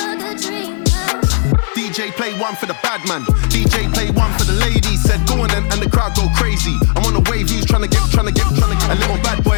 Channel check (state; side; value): silent; right; digital silence